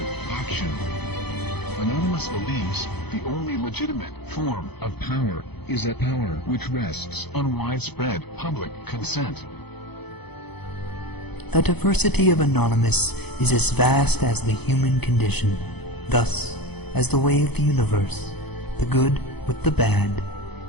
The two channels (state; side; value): late; right; 0.98 ms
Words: action. Anonymous believes the only legitimate form of power is a power which rests on widespread public consent. The diversity of Anonymous is as vast as the human condition, thus, as the way of the universe, the good with the bad,